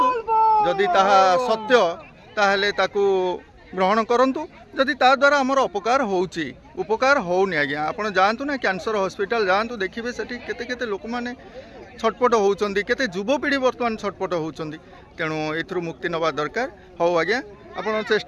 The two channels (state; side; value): identical; both; correlation 1.00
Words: जदि ताहा सत्य ताहले ताकू ग्रहण करंतु जदि ता द्वारा आमर उपकार होउची उपकार होउनी आज्ञा आपण जांतु ना कैंसर हॉस्पिटल जांतु देखिबे सेठी केते केते लोक माने छटपट होउचंदी केते युवपीढ़ी वर्तमान छटपट होउचंदी तेणु एथरु मुक्ति नवा दरकार हो आज्ञा आपण